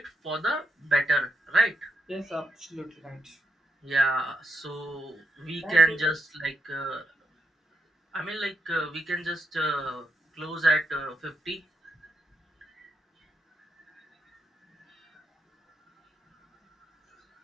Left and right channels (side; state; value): both; normal; correlation 0.81